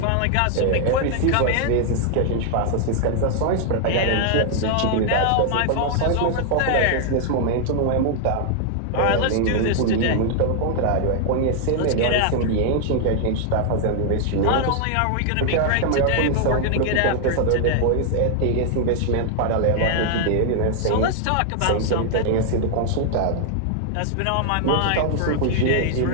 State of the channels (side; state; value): both; different; correlation 0.00